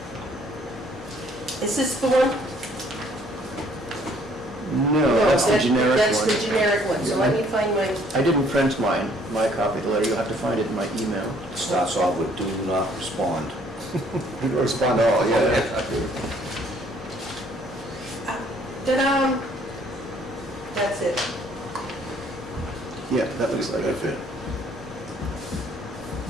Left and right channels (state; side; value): normal; both; correlation 0.61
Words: Is this the one? No, that's the generic That's the one. generic one, so let me find my, I didn't print mine, my copy of the letter. You'll have to find it in my email. It starts off with do not respond. You can respond to all, yeah. ta-da! That's it. Yeah, that looks like That's it. it.